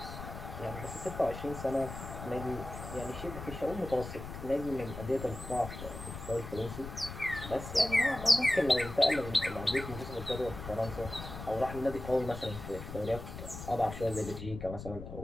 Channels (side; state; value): left; noise; rumble, 10 dB below the sound